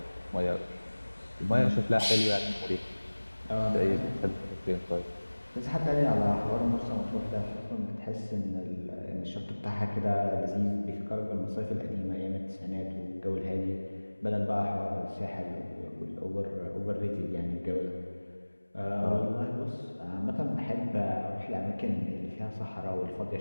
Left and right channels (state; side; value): inverted; both; correlation -1.00